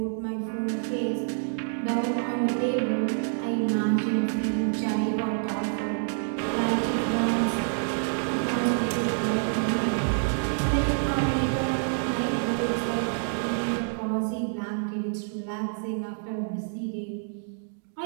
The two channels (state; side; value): silent; left; digital silence